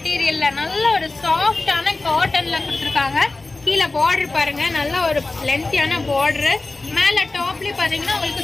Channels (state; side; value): quieter; right; 3.3 dB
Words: நல்ல ஒரு சாஃப்டான காட்டனில் கொடுத்துருக்காங்க. கீழே பார்டர் பாருங்கள், நல்ல ஒரு லென்த்தியான பார்டரு. மேலே டாப்லேயும் பார்த்தீங்கன்னா